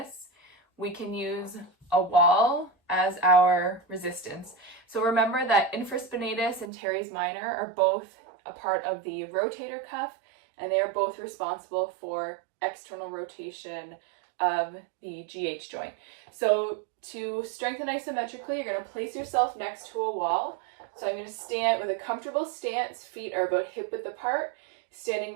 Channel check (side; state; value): left; drops out; at 6.7 s